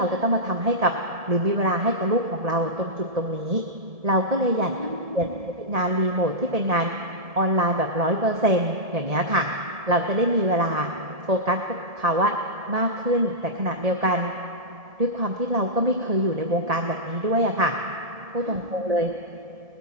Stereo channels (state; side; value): late; left; 1.7 ms